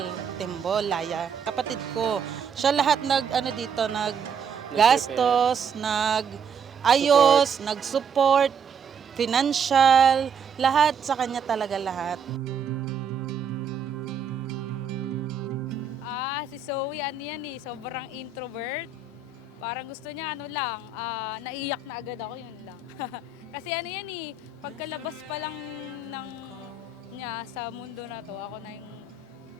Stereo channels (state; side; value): quieter; left; 5.7 dB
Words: Timbolaya. Kapatid ko. Siya lahat nag-gastos, nag-ayos, nag-support, financial, lahat sa kanya talaga lahat. Si Zoe, sobrang introvert. Parang gusto niya, naiyak na agad ako, yun lang. Kasi pagkalabas pa lang niya sa mundo na to, ako na yung